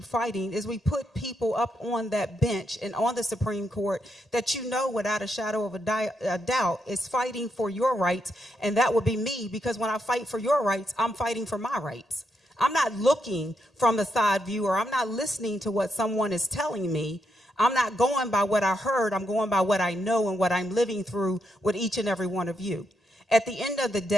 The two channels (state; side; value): normal; both; correlation 0.80